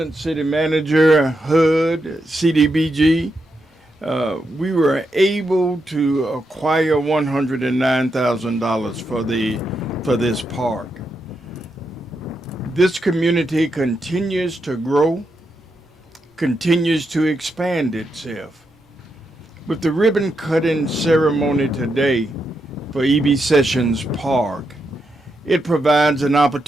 City Manager, HUD, CDBG, we were able to acquire $109,000 for this park. This community continues to grow, continues to expand itself. With the ribbon cutting ceremony today for E.B. Sessions Park, it provides an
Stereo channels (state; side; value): normal; both; correlation 0.84